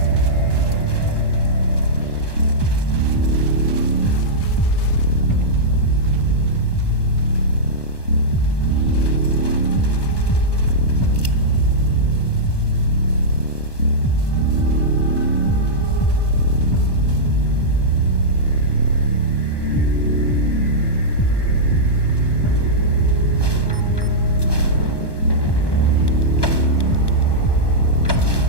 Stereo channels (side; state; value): right; late; 1.1 ms